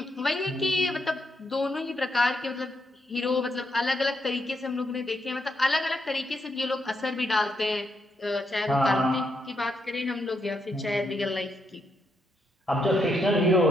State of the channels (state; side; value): normal; both; correlation 0.79